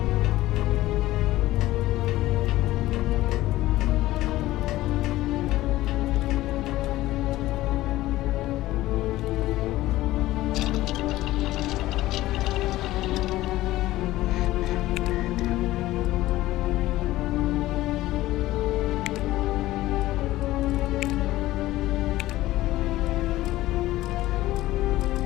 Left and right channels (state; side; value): quieter; right; 16.4 dB